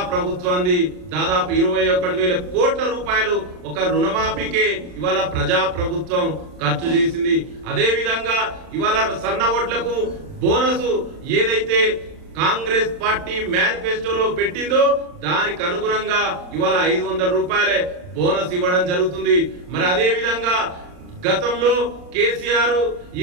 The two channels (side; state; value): left; late; 39 ms